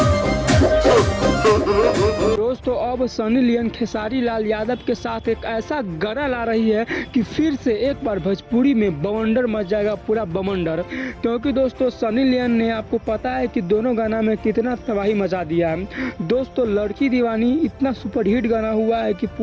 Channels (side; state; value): both; identical; correlation 1.00